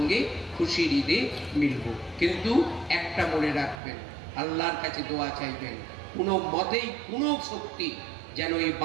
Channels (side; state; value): left; drops out; at 3.8 s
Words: খুশির ঈদে মিলব। কিন্তু একটা মনে রাখবেন, আল্লাহর কাছে দোয়া চাইবেন, কোনো মতেই কোনো শক্তি যেন এই